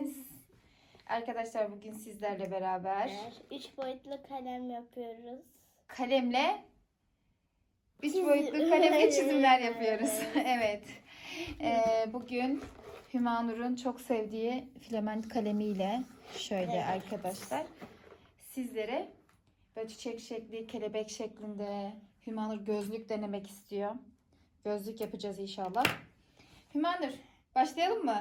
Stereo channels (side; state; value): both; identical; correlation 1.00